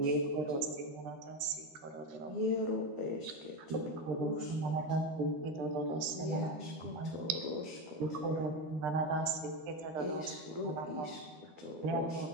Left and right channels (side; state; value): left; late; 13 ms